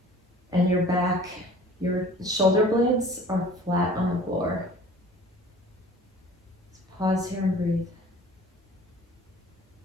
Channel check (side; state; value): both; normal; correlation 0.47